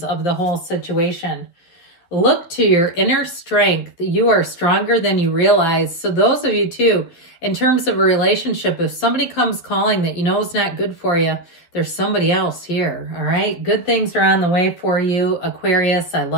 of the whole situation. Look to your inner strength. You are stronger than you realize. So those of you too, in terms of a relationship, if somebody comes calling that you know is not good for you, there's somebody else here, all right? Good things are on the way for you, Aquarius. I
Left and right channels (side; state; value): right; late; 12 ms